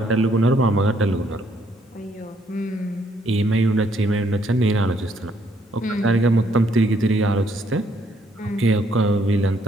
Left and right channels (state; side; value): normal; both; correlation 0.69